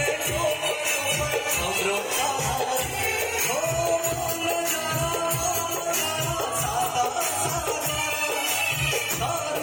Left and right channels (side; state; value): both; identical; correlation 1.00